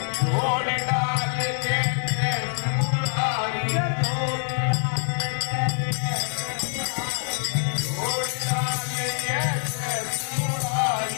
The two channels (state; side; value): silent; right; 62 dB below the other